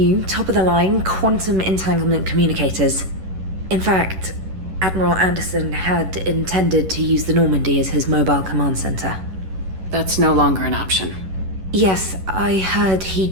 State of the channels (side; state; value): left; late; 11 ms